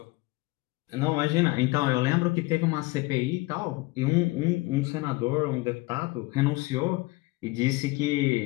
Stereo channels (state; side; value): quieter; right; 22.1 dB